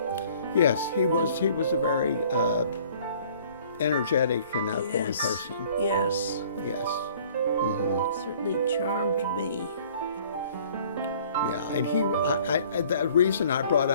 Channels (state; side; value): inverted; both; correlation -0.54